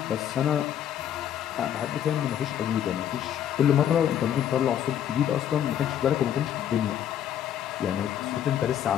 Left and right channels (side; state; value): right; quieter; 10.1 dB